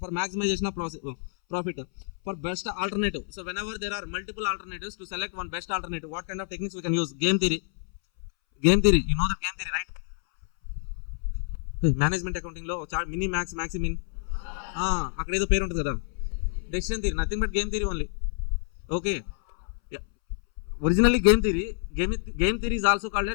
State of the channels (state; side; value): silent; right; 59 dB below the other